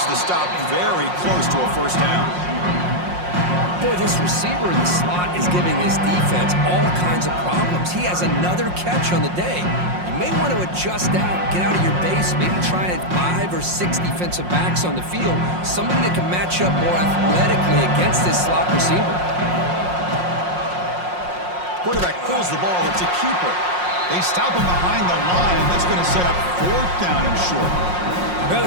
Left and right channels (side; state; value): left; late; 5.6 ms